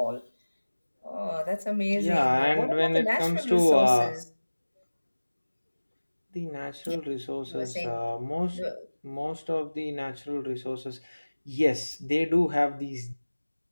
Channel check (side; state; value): both; inverted; correlation -1.00